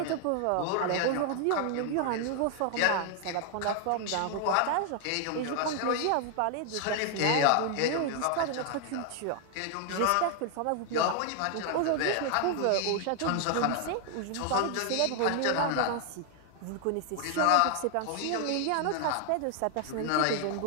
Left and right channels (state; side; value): different; both; correlation 0.00